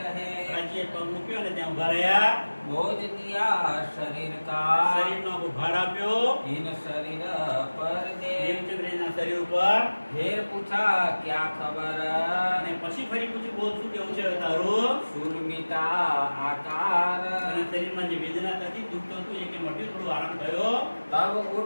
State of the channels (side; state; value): both; inverted; correlation -1.00